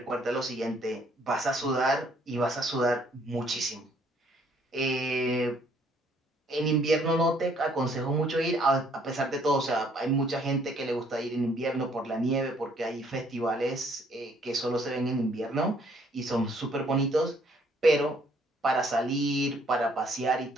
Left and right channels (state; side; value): normal; both; correlation 0.64